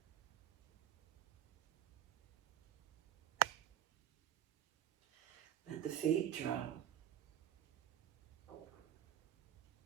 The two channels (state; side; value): quieter; left; 10.9 dB